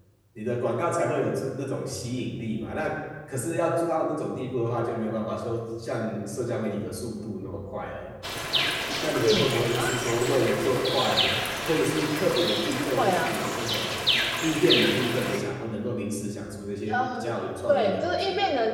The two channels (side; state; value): both; identical; correlation 1.00